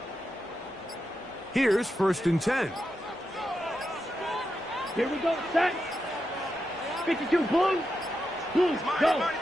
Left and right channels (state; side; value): normal; both; correlation 0.87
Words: Here's 1st and 10. Here we go, set. 52, Blues. Blues, go.